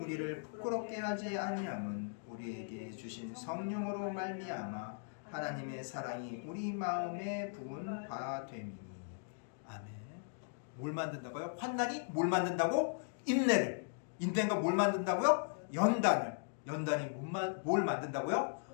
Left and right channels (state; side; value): silent; right; digital silence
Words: 부끄럽게 하지 아니함은 우리에게 주신 성령으로 말미암아 하나님의 사랑이 우리 마음에 부은 바 됨이니. 아멘. 뭘 만든다고요? 환난이 뭘 만든다고? 인내를. 인내가 뭘 만든다고요? 연단을. 연단이 뭘 만든다고요?